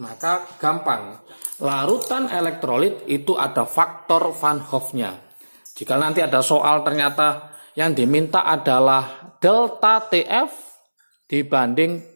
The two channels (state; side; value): inverted; both; correlation -1.00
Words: gampang, larutan elektrolit itu ada faktor Van Hoff-nya. Jika nanti ada soal ternyata yang diminta adalah delta TF dibanding